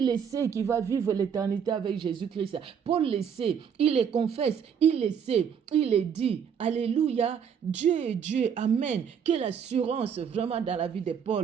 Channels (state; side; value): quieter; left; 7.5 dB